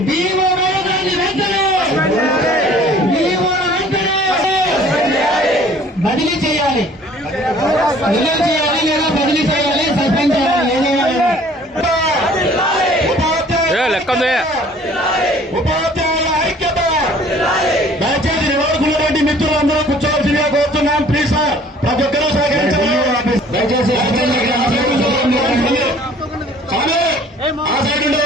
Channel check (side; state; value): both; normal; correlation 0.53